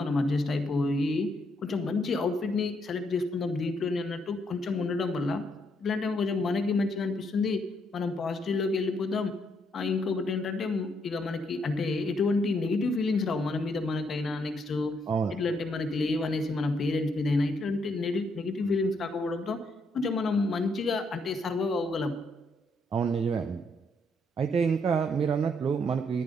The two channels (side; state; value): both; normal; correlation 0.74